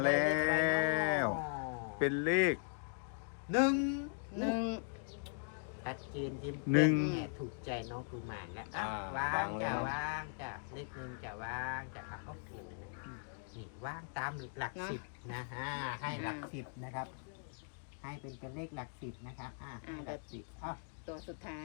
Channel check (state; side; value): silent; right; digital silence